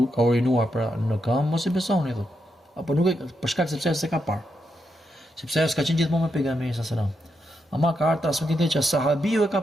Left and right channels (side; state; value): both; normal; correlation 0.83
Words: ka urinuar në këmbë, mos i besoni thotë. Apo nuk e për shkak sepse s'e ka parë. Sepse ajo s'ka qenë gjithmonë me pejgamberin sallallahu alajhi wasallam. Ama ka ardhur transmetim që sahabiu e ka